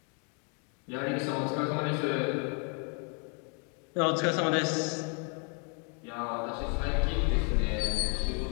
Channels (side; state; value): right; quieter; 38.3 dB